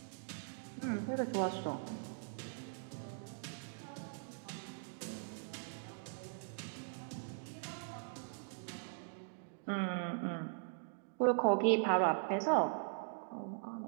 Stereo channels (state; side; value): silent; left; digital silence